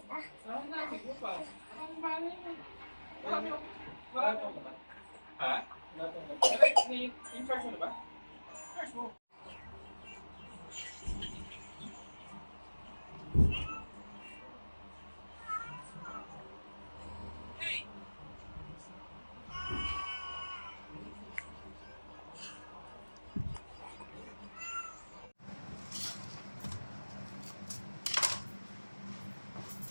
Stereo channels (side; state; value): both; inverted; correlation -1.00